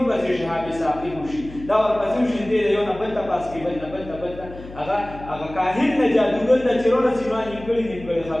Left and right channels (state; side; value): noise; left; hum, 16 dB below the sound